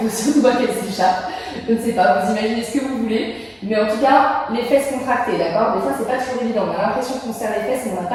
surtout pas qu'elle s'échappe. Je ne sais pas, vous imaginez ce que vous voulez, mais en tout cas, les fesses contractées, d'accord? Des fois, c'est pas toujours évident. On a l'impression qu'on serre les fesses, mais on n'a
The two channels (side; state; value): both; identical; correlation 1.00